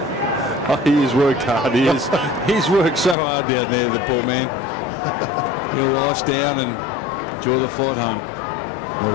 Oh, he has worked hard. He's worked so hard down there, the poor man. He'll ice down and enjoy the flight home.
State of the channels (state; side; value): drops out; right; at 3.2 s